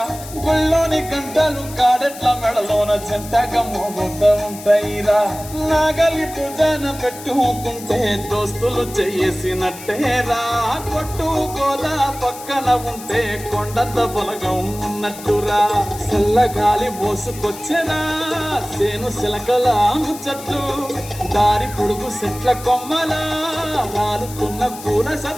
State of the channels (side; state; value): left; noise; hiss, 14 dB below the sound